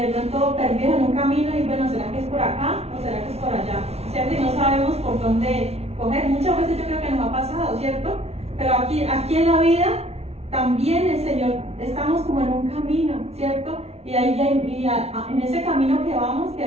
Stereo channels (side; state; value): left; late; 0.31 ms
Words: pronto perdidos en un camino y bueno, ¿será que es por acá o será que es por allá? ¿Cierto? Y no sabemos por dónde coger. Muchas veces yo creo que nos ha pasado, ¿cierto? Pero aquí en la vida también el Señor, estamos como en un camino, ¿cierto? Y en ese camino que vamos,